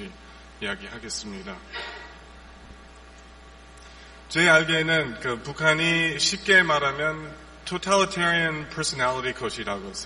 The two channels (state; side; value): identical; both; correlation 1.00